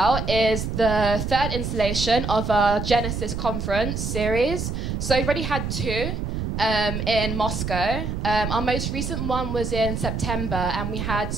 is the third installation of our Genesis conference series. So we've already had two in Moscow. Our most recent one was in September, and we had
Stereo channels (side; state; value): right; noise; rumble, 3 dB below the sound